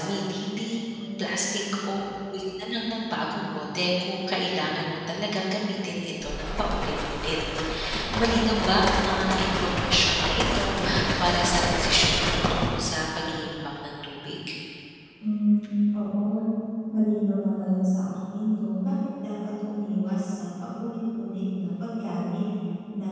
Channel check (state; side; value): identical; both; correlation 1.00